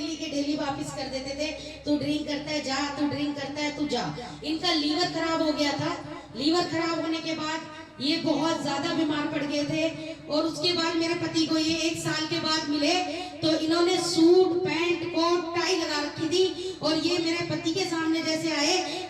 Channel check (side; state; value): both; identical; correlation 1.00